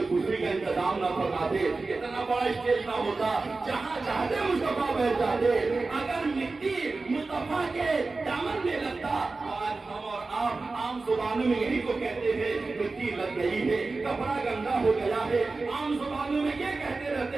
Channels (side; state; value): left; quieter; 3.7 dB